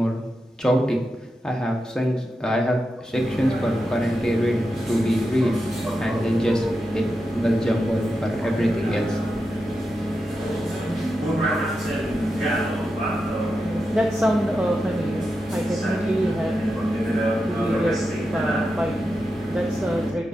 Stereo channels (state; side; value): normal; both; correlation 0.89